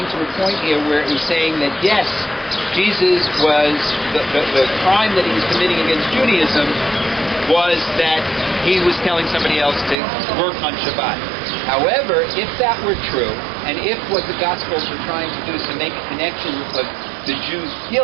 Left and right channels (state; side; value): drops out; left; at 10.0 s